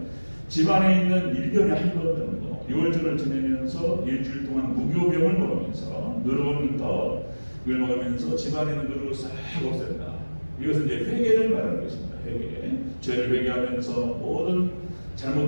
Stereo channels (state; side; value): inverted; both; correlation -1.00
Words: 집안에 있는 1년에 한 번 정도 6월절을 지내면서 일주일 동안 무교병을 먹으면서 누룩은 더 이걸 먹으면서 집안에 있는 누룩을 싹 없앤다. 이것은 이제 회개를 말하는 것입니다. 회개. 죄를 회개하면서 모든